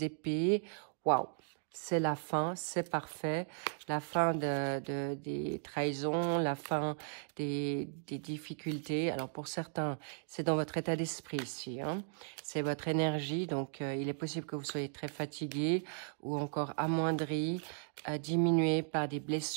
Waouh! C'est la fin, c'est parfait. La fin des trahisons, la fin des difficultés. Alors, pour certains, c'est dans votre état d'esprit ici. Hein. C'est votre énergie. Donc, il est possible que vous soyez très fatigué ou encore amoindri, diminué par des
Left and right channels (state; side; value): silent; left; digital silence